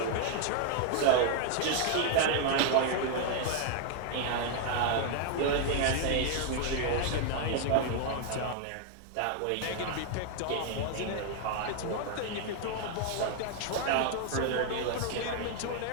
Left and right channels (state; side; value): different; both; correlation 0.00